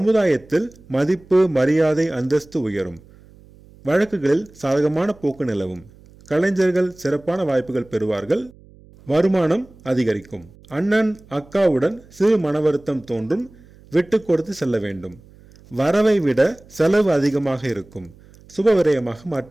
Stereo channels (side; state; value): right; noise; hum, 25 dB below the sound